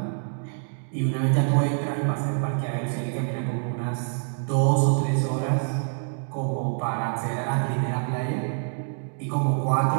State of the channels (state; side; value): silent; left; 61 dB below the other